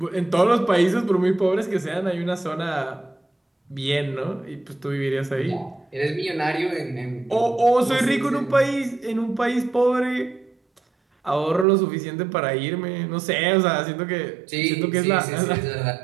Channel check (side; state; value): left; drops out; at 11.7 s